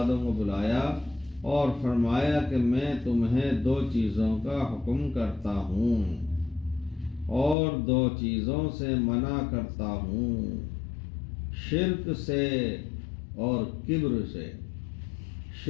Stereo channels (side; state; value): right; drops out; at 7.6 s